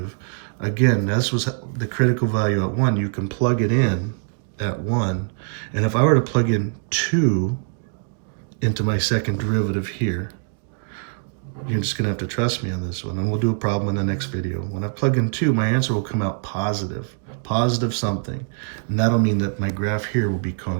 again, this was the critical value at 1. You can plug it in at 1. And if I were to plug in 2 into my second derivative here, you're just gonna have to trust me on this one, and we'll do a problem in the next video. When I plug in 2, my answer will come out positive something. And that'll mean that my graph here will be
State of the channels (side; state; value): left; silent; digital silence